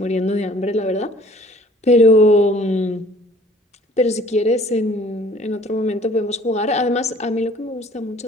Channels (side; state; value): both; normal; correlation 0.53